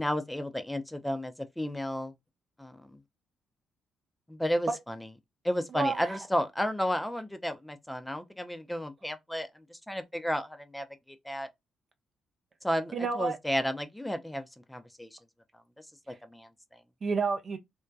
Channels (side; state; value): both; normal; correlation 0.93